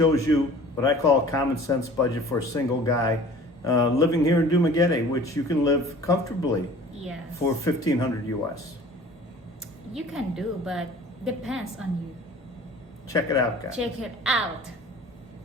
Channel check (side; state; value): both; normal; correlation 0.46